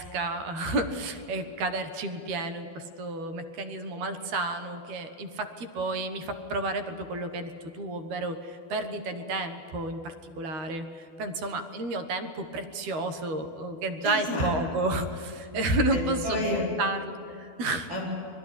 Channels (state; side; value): late; left; 12 ms